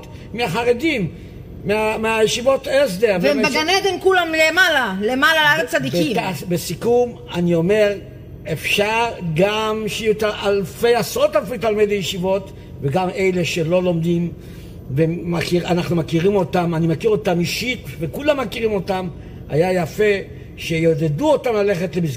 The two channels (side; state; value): both; identical; correlation 1.00